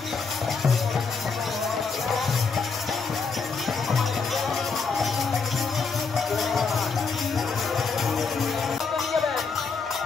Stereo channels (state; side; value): quieter; right; 4.9 dB